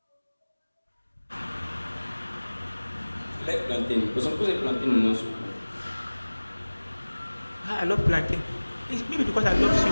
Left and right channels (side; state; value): both; inverted; correlation -1.00